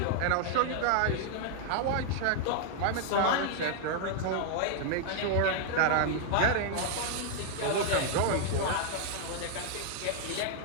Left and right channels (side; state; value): both; different; correlation 0.00